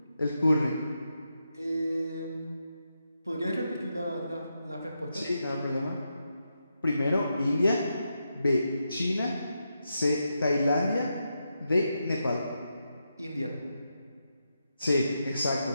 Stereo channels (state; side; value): inverted; both; correlation -0.85